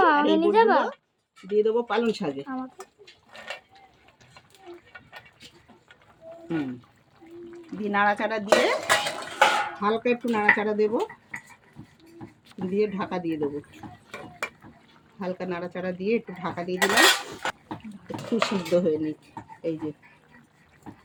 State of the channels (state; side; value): identical; both; correlation 1.00